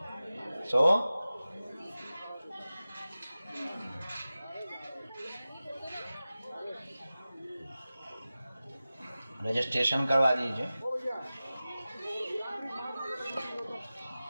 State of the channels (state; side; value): inverted; both; correlation -0.96